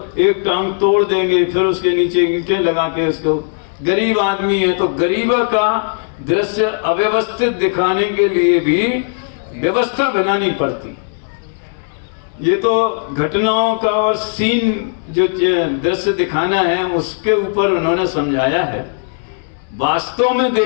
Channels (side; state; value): right; silent; digital silence